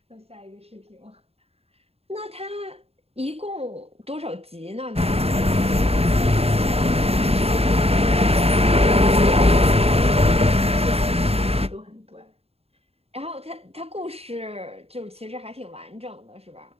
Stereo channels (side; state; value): left; late; 0.29 ms